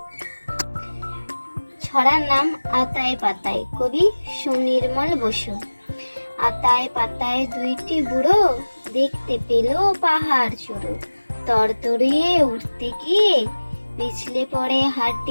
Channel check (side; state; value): both; inverted; correlation -1.00